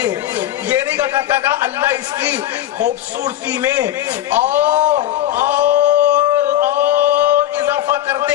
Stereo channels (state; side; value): quieter; right; 12.7 dB